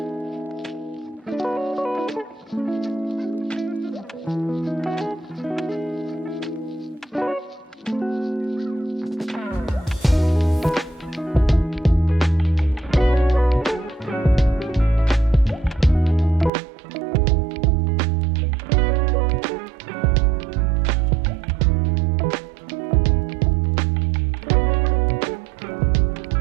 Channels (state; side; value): drops out; left; at 16.5 s